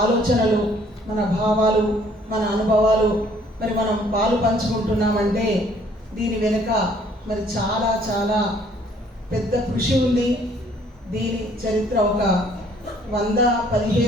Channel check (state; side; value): normal; both; correlation 0.60